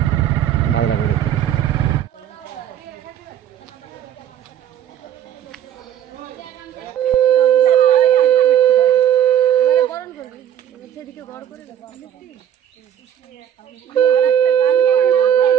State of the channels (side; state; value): left; quieter; 10.1 dB